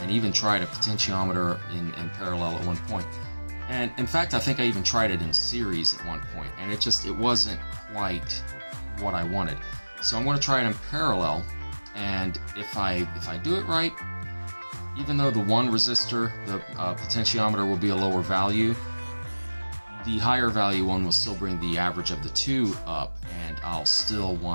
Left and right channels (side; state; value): both; inverted; correlation -1.00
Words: even tried a potentiometer in parallel at one point. And in fact, I think I even tried it in series at one point, and it wasn't quite what I wanted. So I'm going to try it in parallel, and if I do it right, even though the one resistor, the potentiometer, will be a lower value, the higher value one will still bring the average of the two up, and I'll still